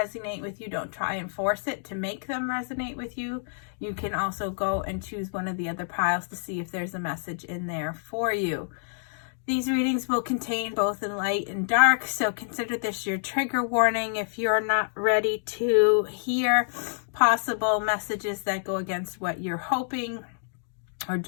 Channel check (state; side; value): silent; right; digital silence